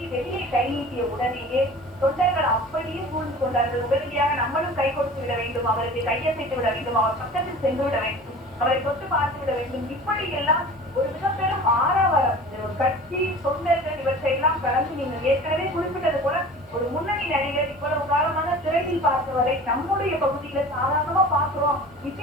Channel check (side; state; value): both; normal; correlation 0.40